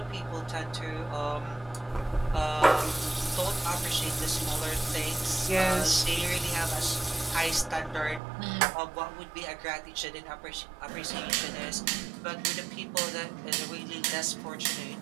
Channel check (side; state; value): left; drops out; at 8.2 s